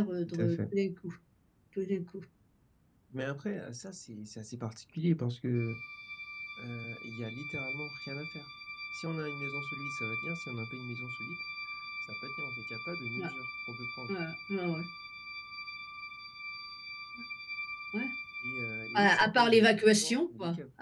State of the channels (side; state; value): both; identical; correlation 1.00